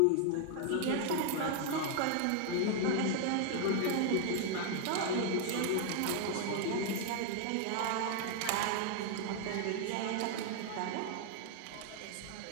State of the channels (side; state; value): both; different; correlation 0.00